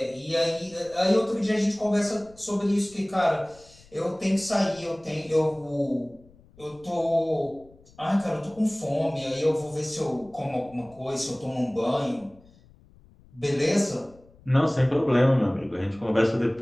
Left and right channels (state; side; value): noise; left; rumble, 26 dB below the sound